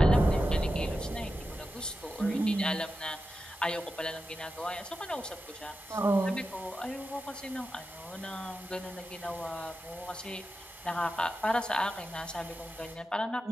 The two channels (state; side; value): normal; both; correlation 0.91